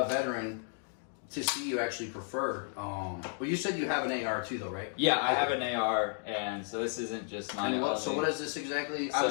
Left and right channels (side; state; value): right; silent; 56 dB below the other